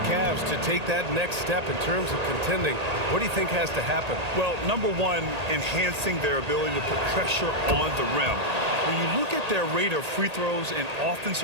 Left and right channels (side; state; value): left; late; 1.8 ms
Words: Cavs to take that next step in terms of contending, what do you think has to happen? Well, number 1, enhancing their ability to put pressure on the rim. When you look at their rate of free throws and